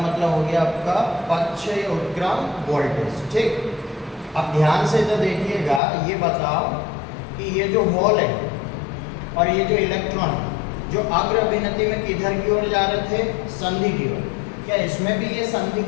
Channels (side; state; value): right; drops out; at 5.8 s